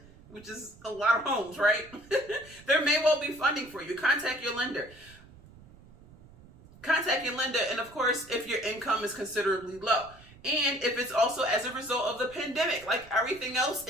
which is a lot of homes, right? There may well be funding for you. Contact your lender. And of course, if your income is considerably low. And if it's also as a result of the pandemic, like everything else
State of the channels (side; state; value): right; noise; rumble, 23 dB below the sound